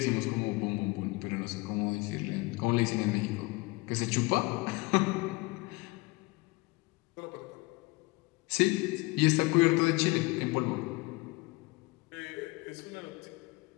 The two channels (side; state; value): right; quieter; 23.9 dB